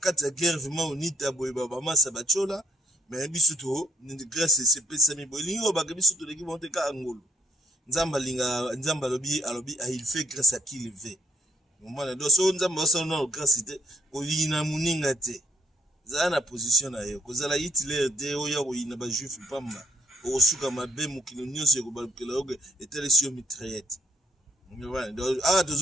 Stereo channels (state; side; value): normal; both; correlation 0.69